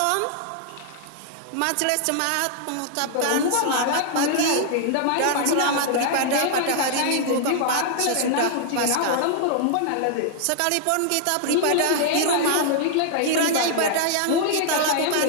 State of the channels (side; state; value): both; different; correlation -0.01